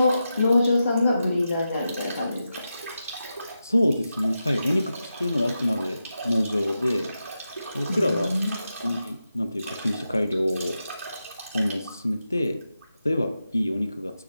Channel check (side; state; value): both; inverted; correlation -0.89